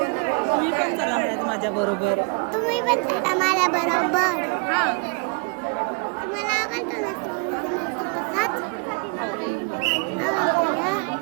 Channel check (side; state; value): left; quieter; 35.0 dB